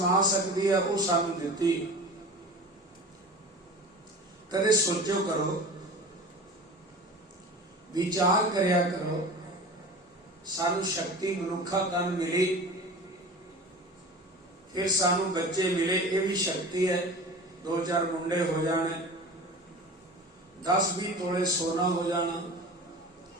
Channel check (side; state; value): both; normal; correlation 0.36